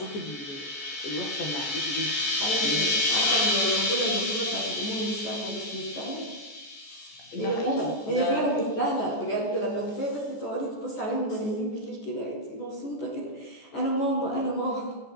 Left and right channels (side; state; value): right; late; 14 ms